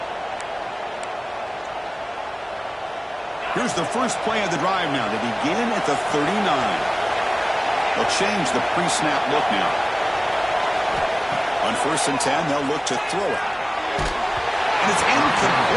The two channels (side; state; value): both; identical; correlation 1.00